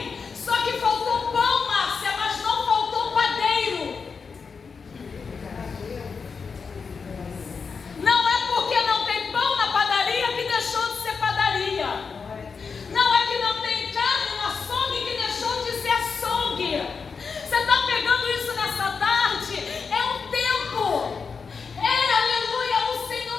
só que faltou pão, Márcia, mas não faltou padeiro.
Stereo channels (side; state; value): right; quieter; 5.4 dB